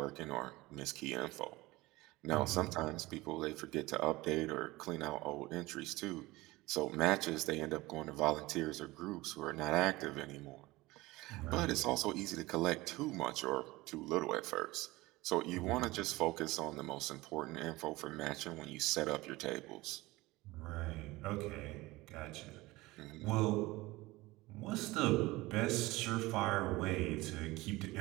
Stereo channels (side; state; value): left; quieter; 20.3 dB